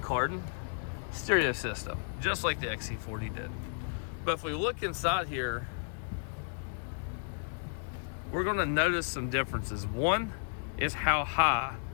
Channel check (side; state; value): right; silent; digital silence